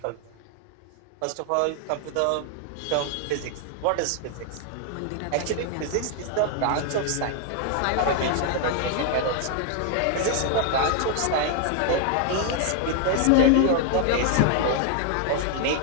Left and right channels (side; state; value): both; different; correlation 0.00